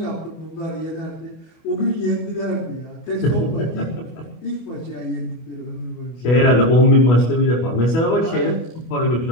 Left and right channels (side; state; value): right; late; 25 ms